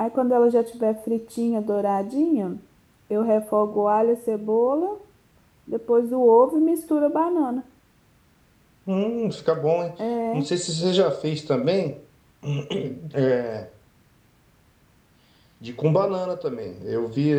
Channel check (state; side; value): identical; both; correlation 1.00